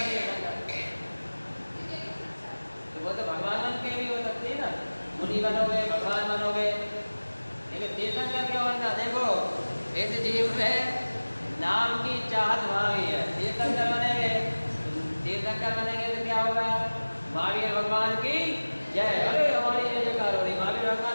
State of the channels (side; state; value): both; inverted; correlation -1.00